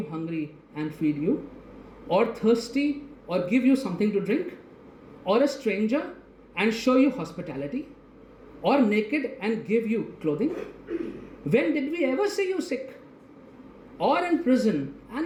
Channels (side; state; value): both; identical; correlation 1.00